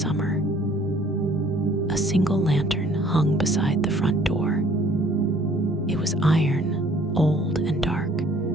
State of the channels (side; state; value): both; normal; correlation 0.57